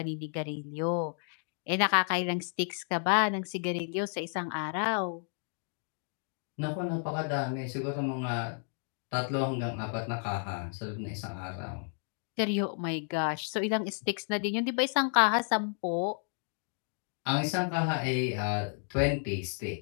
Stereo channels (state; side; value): silent; right; 56 dB below the other